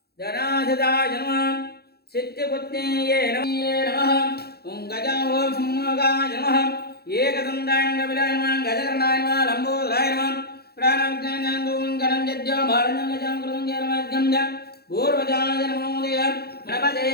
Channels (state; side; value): late; right; 0.46 ms